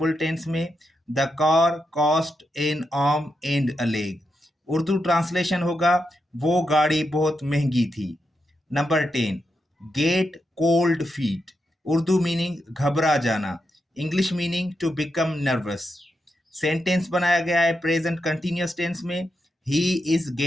टेंस में, the car cost an arm and a leg. Urdu translation होगा वो गाड़ी बहुत महंगी थी। Number 10 get cold feet. Urdu meaning घबरा जाना। English meaning to become nervous. Sentence बनाया गया है प्रेजेंट कंटिन्यूअस टेंस में, he is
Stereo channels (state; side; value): normal; both; correlation 0.85